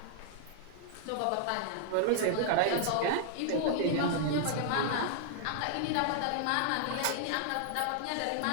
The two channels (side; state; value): both; different; correlation -0.01